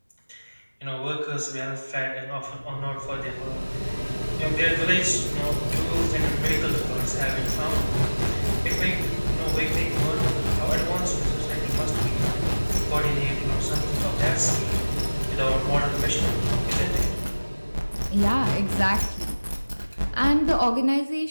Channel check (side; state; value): both; inverted; correlation -1.00